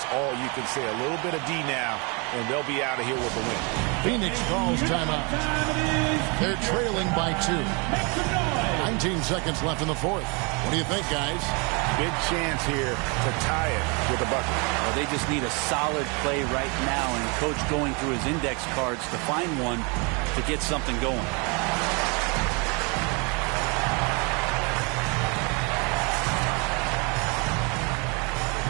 all you can say. A little bit of D now, and they'll be out of here with the win. Phoenix calls timeout. They're trailing by 2. 19 seconds left in the fourth. What do you think, guys? Big chance here to tie it with a bucket. Well, they just need a solid play right now, and Coach going through his index cards to find one to get something going.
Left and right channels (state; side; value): quieter; left; 31.8 dB